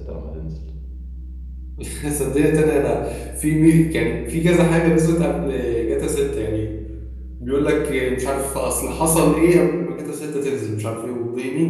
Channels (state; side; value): identical; both; correlation 1.00